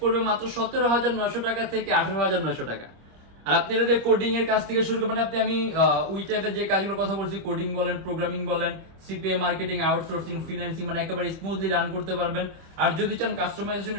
মাত্র 17,900 টাকা থেকে 18,900 টাকা। আর আপনি এটা দিয়ে কোডিং এর কাজ থেকে শুরু করবেন, আমি ওই টাইপের যে কাজগুলোর কথা বলছি, কোডিং বলেন, প্রোগ্রামিং বলেন, সিপিএ মার্কেটিং, আউটসোর্সিং, ফ্রিল্যান্সিং, মানে একেবারে স্মুথলি রান করতে পারবেন। আর যদি চান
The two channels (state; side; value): late; left; 26 ms